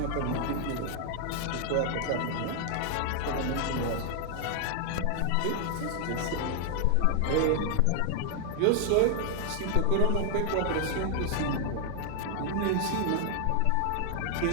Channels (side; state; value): both; different; correlation 0.00